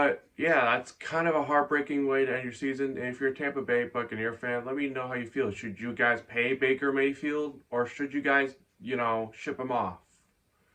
yeah, that's kind of a heartbreaking way to end your season. And if you're a Tampa Bay Buccaneer fan, let me know how you feel. Should you guys pay Baker Mayfield, or should you guys, ship him off?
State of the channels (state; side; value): identical; both; correlation 1.00